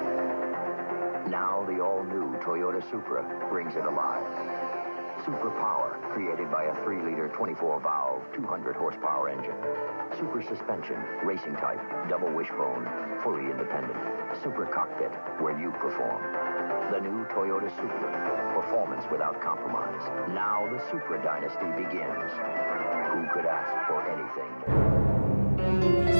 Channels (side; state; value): both; inverted; correlation -1.00